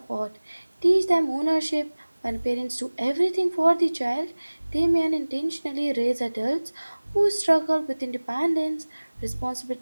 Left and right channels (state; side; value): inverted; both; correlation -1.00